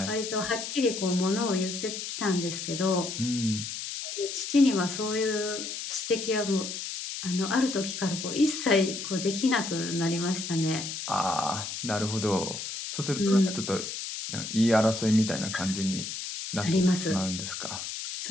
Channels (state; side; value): noise; left; hiss, 6 dB below the sound